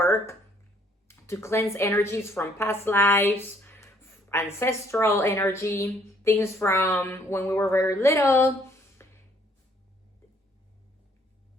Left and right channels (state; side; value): normal; both; correlation 0.64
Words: to cleanse energies from past lives, ancestral energy, things from when we were very little,